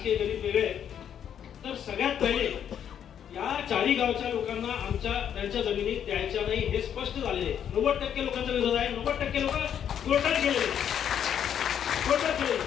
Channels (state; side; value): quieter; right; 9.1 dB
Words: गणित वेगळे आहे. तर सगळ्यात पहिले या चारी गावच्या लोकांना त्यांच्या जमिनी द्यायच्या नाही हे स्पष्ट झालेले. 90% लोकांचा विरोध आहे. 90% लोक कोर्टात गेलेले.